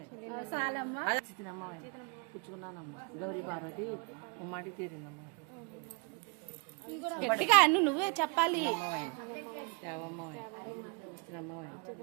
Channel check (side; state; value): left; quieter; 32.1 dB